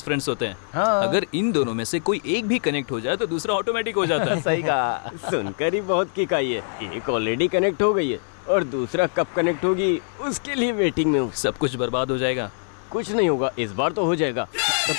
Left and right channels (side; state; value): right; silent; 56 dB below the other